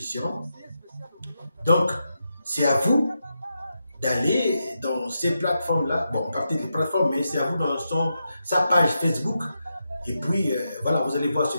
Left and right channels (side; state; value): both; inverted; correlation -0.86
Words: Donc, c'est à vous d'aller dans ces plateformes-là. Bon, partez des plateformes, mais c'est à vous dans sa page Facebook. Et puis, voilà, vous allez voir ce